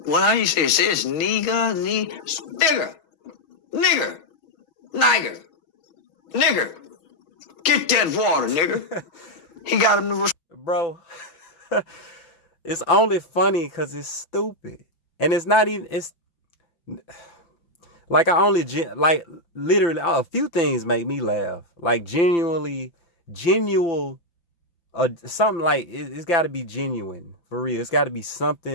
What do you say? It says nigger. Get that water, nigga. He got him to... Bro, it's only funny because it's stupid. And it's not even... Like like literally a few things make me laugh. Like genuinely, something like it's got to be genuine for real. It's got to be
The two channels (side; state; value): right; late; 5.8 ms